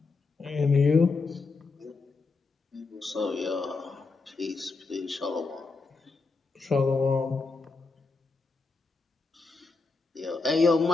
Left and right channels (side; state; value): right; quieter; 4.0 dB